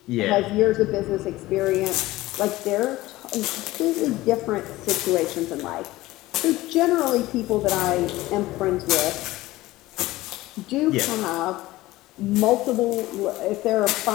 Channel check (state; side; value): quieter; right; 17.9 dB